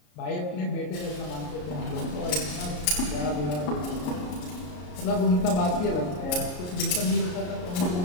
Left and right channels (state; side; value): late; right; 33 ms